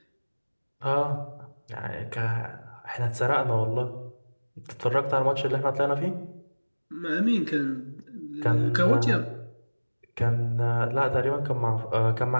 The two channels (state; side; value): inverted; both; correlation -1.00